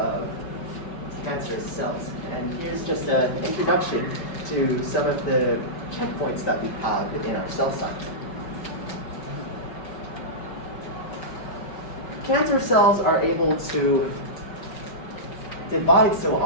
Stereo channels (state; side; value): late; right; 5.3 ms